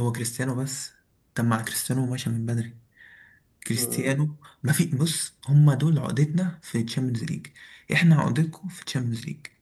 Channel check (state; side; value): identical; both; correlation 1.00